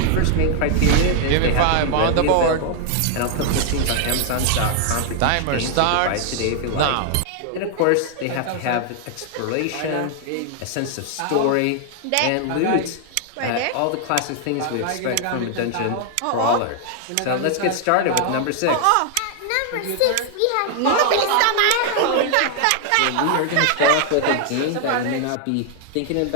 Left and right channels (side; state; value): both; different; correlation 0.00